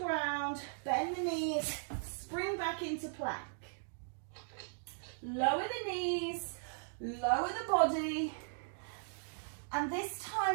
ground, bend the knees, spring back into plank. Lower the knees, lower the body, and this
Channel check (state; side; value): silent; left; digital silence